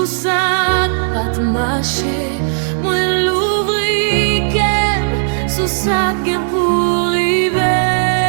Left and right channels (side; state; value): left; silent; digital silence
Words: ça, pas de marcher. Moi l'ouvrir qu'aime sous ça gain pour arriver.